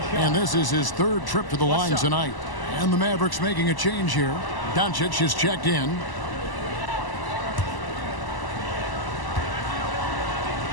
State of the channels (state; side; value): late; right; 1.0 ms